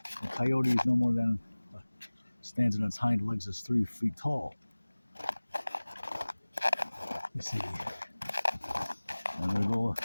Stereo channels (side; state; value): both; inverted; correlation -1.00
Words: the coyote is no more than stands on its hind legs is 3 feet tall. You see, and they'll